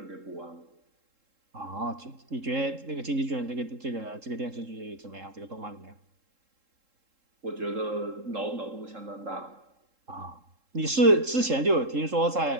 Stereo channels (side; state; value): left; late; 3.7 ms